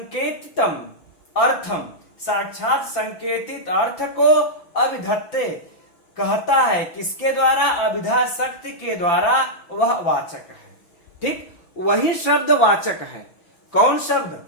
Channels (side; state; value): right; late; 5.9 ms